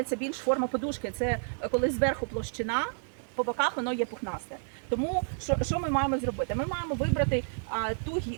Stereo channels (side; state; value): left; silent; digital silence